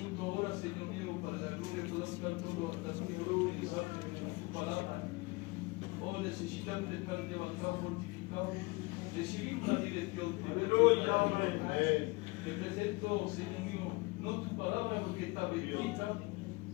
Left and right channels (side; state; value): right; quieter; 25.0 dB